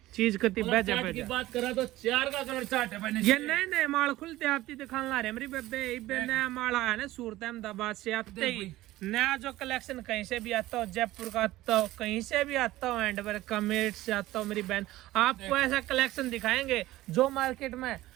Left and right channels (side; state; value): left; quieter; 16.7 dB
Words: चीज कति कलर बेजा चार्ट की बेजा। बात करा तो 4 का कलर चार्ट है भाई। ये नए नए माल खुलते आती दिखाने ला रहे मेरी बेबे, इबे नया माल आया ना सूरत अहमदाबाद से आते ही नया जो कलेक्शन कहीं से भी आता हो, जयपुर का आता हो, कहीं से भी आता हो, एंड कमेट से आता हो मेरी बहन, आपको ऐसा कलेक्शन दिखाएंगे जो मार्केट में